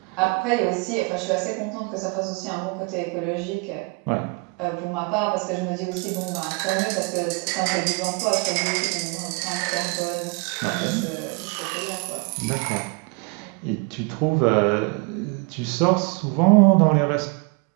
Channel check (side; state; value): left; quieter; 30.2 dB